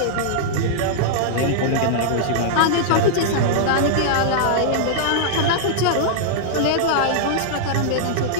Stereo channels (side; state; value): both; different; correlation -0.01